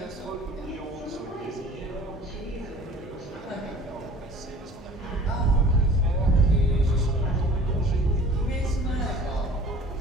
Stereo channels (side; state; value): both; normal; correlation 0.47